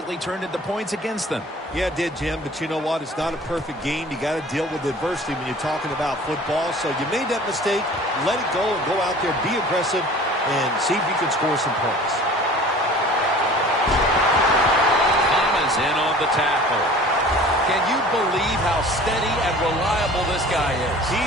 turned into points against them. Yeah, it did, Jim, but you know what? It's not a perfect game. You got to deal with adversity when you're talking about football. So you made that mistake, let it go, and go out there, be aggressive, and see if you can score some points. Thomas in on the tackle. Can you believe how steady and reliable this guy is? He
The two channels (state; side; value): normal; both; correlation 0.45